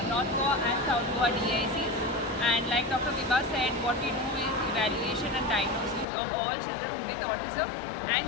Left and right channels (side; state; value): right; drops out; at 6.1 s